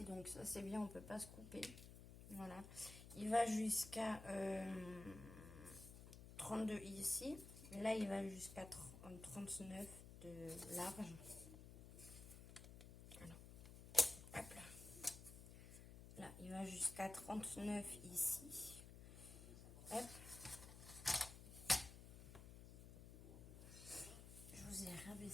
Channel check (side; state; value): left; noise; hum, 13 dB below the sound